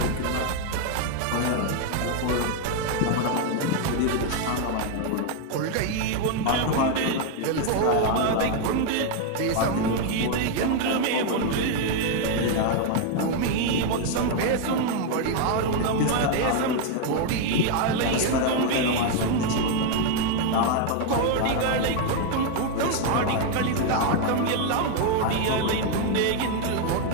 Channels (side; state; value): both; different; correlation 0.01